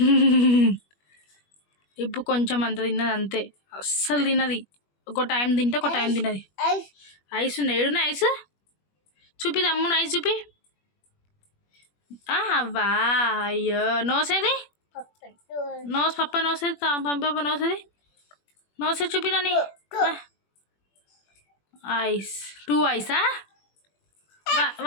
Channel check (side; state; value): right; late; 21 ms